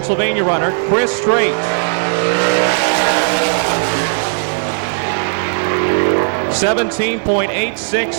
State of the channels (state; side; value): silent; left; digital silence